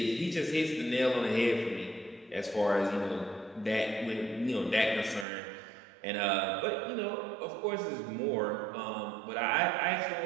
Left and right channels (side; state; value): left; drops out; at 5.2 s